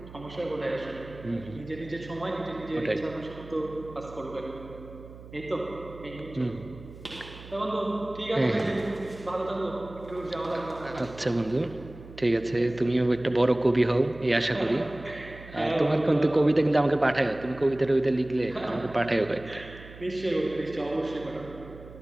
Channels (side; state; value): right; noise; hum, 17 dB below the sound